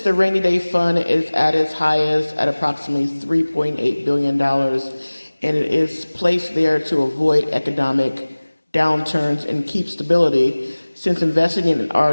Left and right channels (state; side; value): inverted; both; correlation -1.00